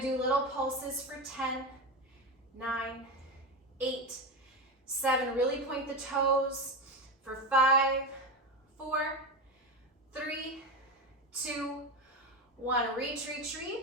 do little pulses for 10, 9, 8, 7. Really point the toes for 5, 4, 3, 2, 1. Reach, reach,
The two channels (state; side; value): normal; both; correlation 0.18